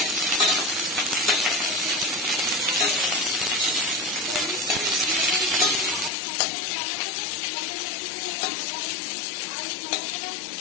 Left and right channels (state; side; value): drops out; right; at 6.1 s